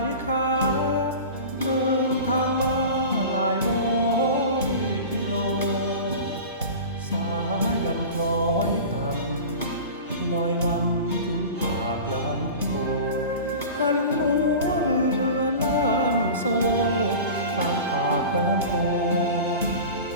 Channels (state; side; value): inverted; both; correlation -0.34